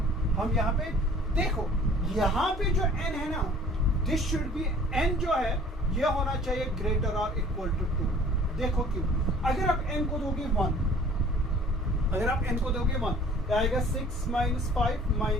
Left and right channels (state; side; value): normal; both; correlation 0.51